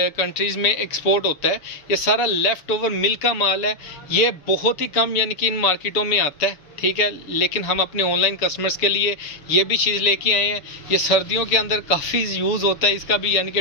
में एक्सपोर्ट होता है। ये सारा लेफ़्ट ओवर मिल का माल है। ये बहुत ही कम यानी कि इन मार्केटों में आता है, ठीक है, लेकिन हम अपने ऑनलाइन कस्टमर्स के लिए ये भी चीज़ लेके आए हैं। ये सर्दियों के अंदर काफ़ी यूज़ होता है इसका भी, यानी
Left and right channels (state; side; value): late; right; 6.9 ms